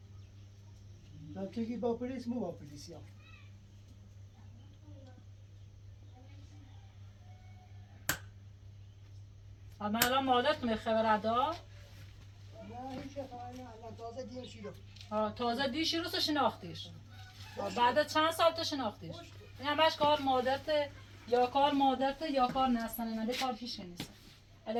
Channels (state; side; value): identical; both; correlation 1.00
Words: تو که با پلیس مو با پلیسی هم من الان مادرت می خبر ادا نه هیچ الان تازه دیم شیدم تازه دیشی رو شناختیش بعد چند سال تو شناختیش این همش کار مادرت یا کار مادرت یا کار نستنه نده کار هیچ نیست